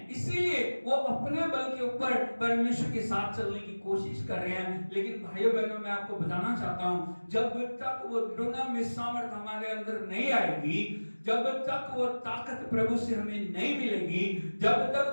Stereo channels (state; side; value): inverted; both; correlation -1.00